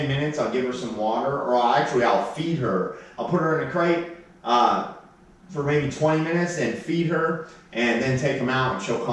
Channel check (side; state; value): both; identical; correlation 1.00